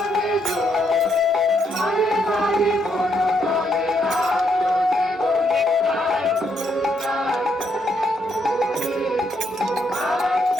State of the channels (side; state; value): both; normal; correlation 0.75